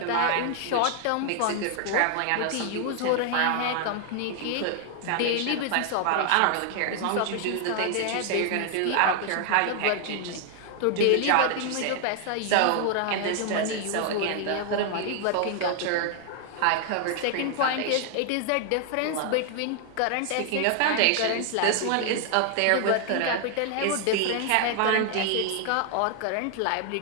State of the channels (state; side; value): different; both; correlation 0.00